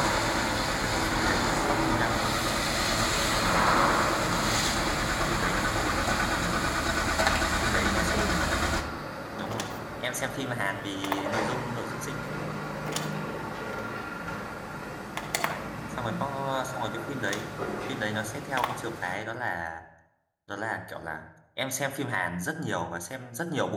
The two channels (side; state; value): both; identical; correlation 1.00